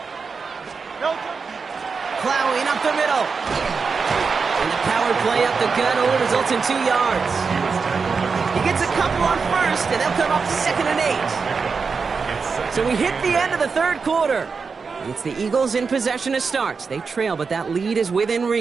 Plowing up the middle. And the power play up the gut only results in 2 yards. He gets a couple on first, and they'll come up second and 8. So we hit the end of the third quarter. It's the Eagles in possession to start. They trail, but that lead is within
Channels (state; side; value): quieter; left; 5.1 dB